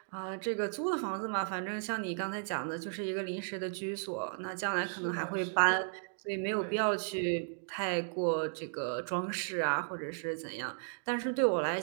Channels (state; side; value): silent; left; digital silence